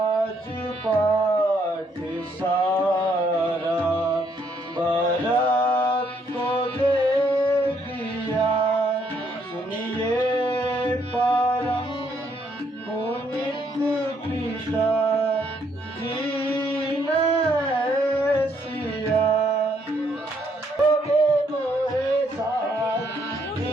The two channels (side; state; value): both; normal; correlation 0.71